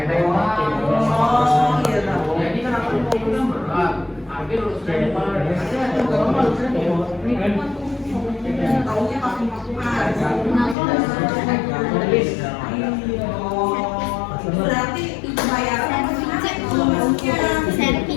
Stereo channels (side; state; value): right; drops out; at 10.8 s